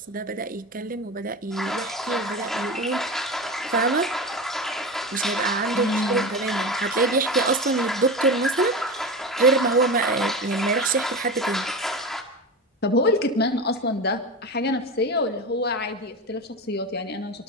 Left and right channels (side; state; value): both; normal; correlation 0.24